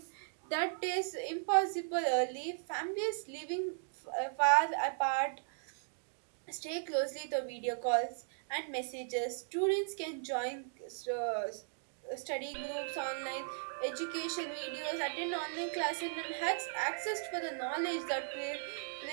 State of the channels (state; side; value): silent; left; digital silence